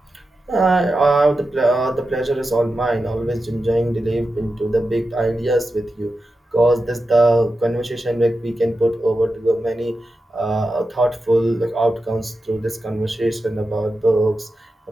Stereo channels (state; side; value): normal; both; correlation 0.91